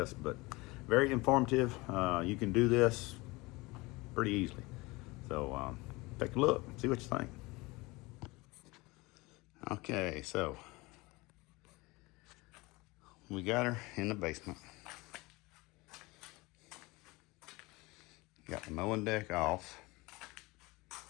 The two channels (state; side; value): quieter; right; 23.2 dB